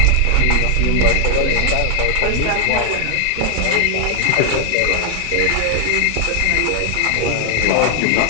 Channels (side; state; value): both; different; correlation 0.00